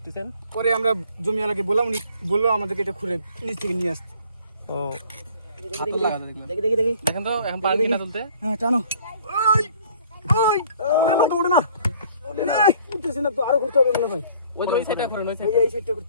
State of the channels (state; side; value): inverted; both; correlation -0.55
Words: পরে আমরা জমিওয়ালাকে বললাম, উনি বললো আমাদেরকে এটা খুঁড়ে নিচ থেকে নিয়ে আসতে। ও হাতল লাগাতে দেখলাম। দেখি। দেখেন তো এখন পারেন কিনা তুলতে? হ্যাঁ টানো। ওড়ে না। উঠতেছে না তো, আরো ঘুরতে হবে মনে হয়। ওই যে ওই সাইডটা করেন, ওই এই সাইডটা। এই সাইডটা